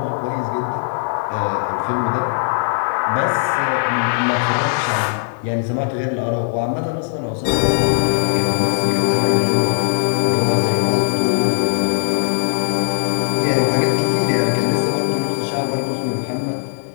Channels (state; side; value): silent; right; digital silence